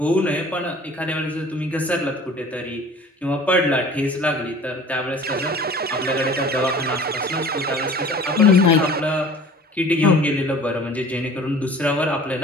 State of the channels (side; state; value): both; normal; correlation 0.45